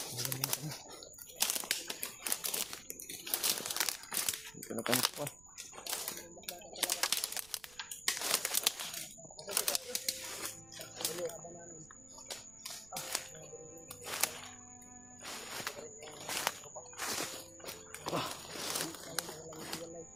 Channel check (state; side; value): noise; right; rumble, 21 dB below the sound